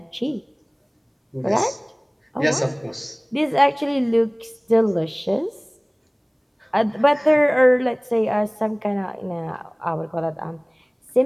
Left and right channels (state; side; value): identical; both; correlation 1.00